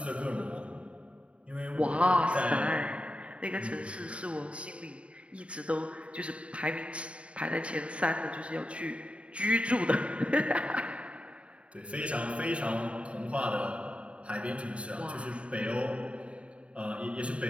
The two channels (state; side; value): late; left; 0.062 ms